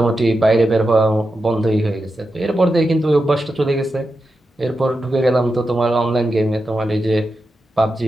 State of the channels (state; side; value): normal; both; correlation 0.89